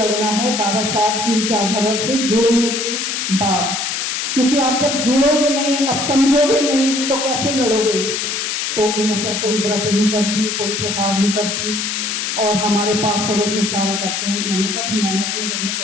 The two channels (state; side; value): noise; left; hiss, 2 dB below the sound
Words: है बाबा साहब की विचारधारा से जुड़ने के बाद, क्योंकि आप जब जुड़ोगे नहीं, अब समझोगे नहीं, तो कैसे लड़ोगे। तो इनका कोई व्रत नहीं करती, कोई त्योहार नहीं करती, और हमारे पास पड़ोस में सारे करते हैं। मैंने कहा मैंने अपने घर में